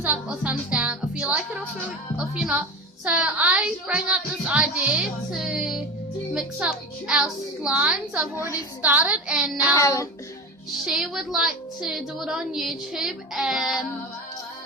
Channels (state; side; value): normal; both; correlation 0.30